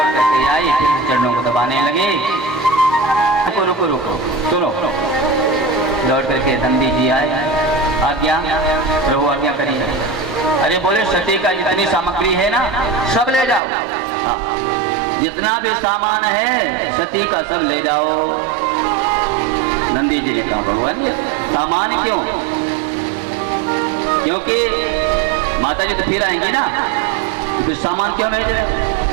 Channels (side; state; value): left; drops out; at 13.6 s